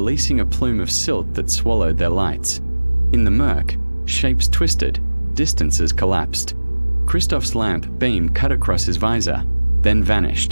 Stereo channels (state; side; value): inverted; both; correlation -1.00